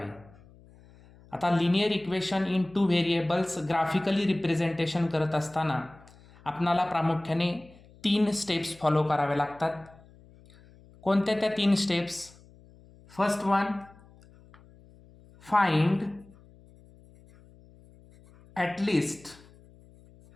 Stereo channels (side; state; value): left; noise; hum, 25 dB below the sound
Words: आता linear equation in 2 variables graphically representation करत असताना आपणाला प्रामुख्याने 3 स्टेप्स फॉलो करावे लागतात. कोणत्या त्या 3 steps? First one, find at least